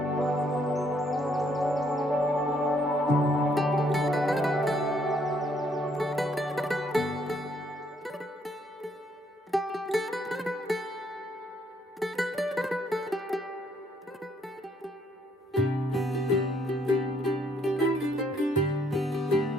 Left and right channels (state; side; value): normal; both; correlation 0.69